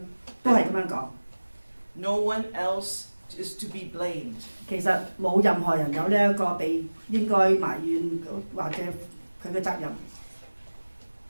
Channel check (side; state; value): both; inverted; correlation -1.00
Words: 都係咁樣講。No one else is to be blamed. 其實冇任何人有呢一個被應該埋怨或者佢嘅責任。